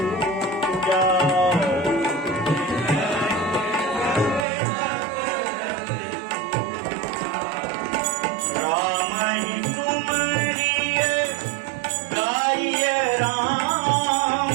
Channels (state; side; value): drops out; left; at 4.5 s